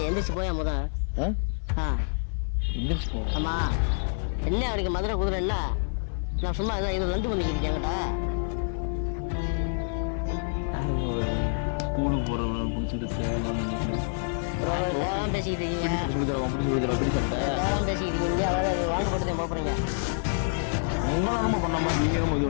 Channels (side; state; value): right; silent; digital silence